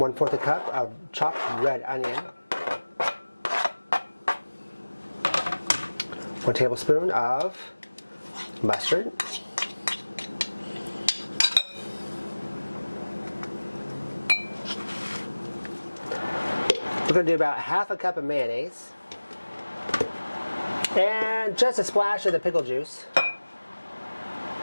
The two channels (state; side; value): inverted; both; correlation -1.00